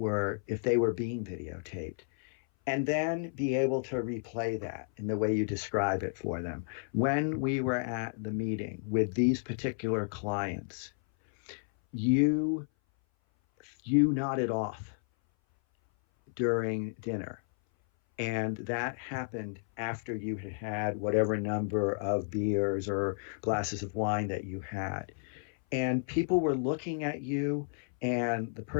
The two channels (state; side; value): silent; right; 56 dB below the other